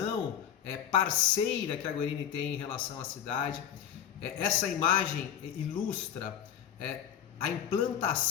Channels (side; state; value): right; quieter; 9.7 dB